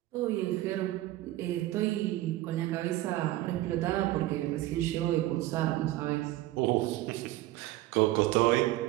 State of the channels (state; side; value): quieter; left; 16.3 dB